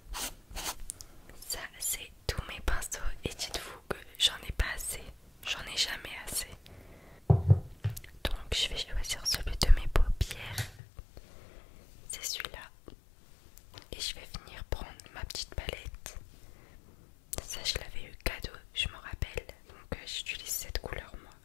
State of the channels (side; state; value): right; drops out; at 10.8 s